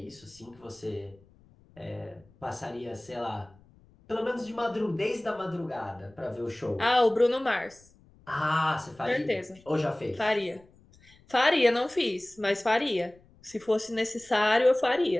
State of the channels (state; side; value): noise; left; rumble, 28 dB below the sound